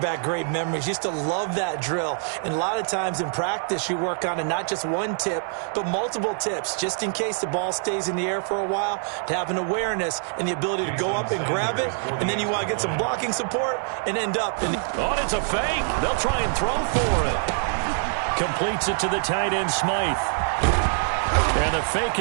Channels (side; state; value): left; silent; 62 dB below the other